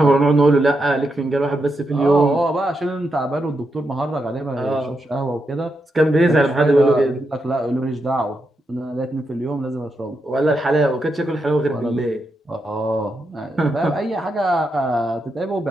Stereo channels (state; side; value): normal; both; correlation 0.84